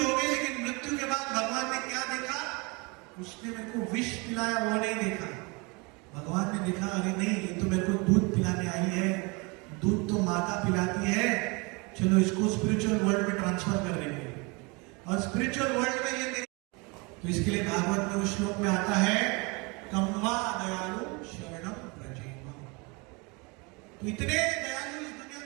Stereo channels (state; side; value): quieter; left; 28.7 dB